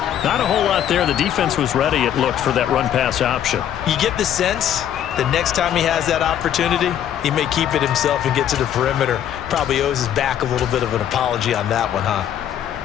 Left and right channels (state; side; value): quieter; right; 10.3 dB